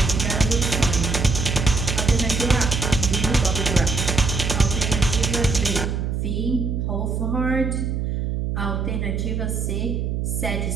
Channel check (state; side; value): noise; right; hum, 1 dB below the sound